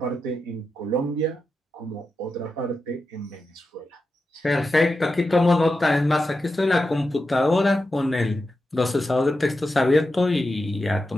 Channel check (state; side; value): normal; both; correlation 0.90